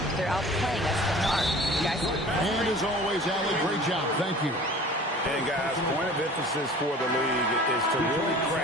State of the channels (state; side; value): normal; both; correlation 0.44